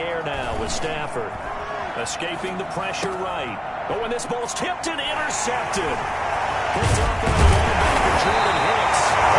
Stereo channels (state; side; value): identical; both; correlation 1.00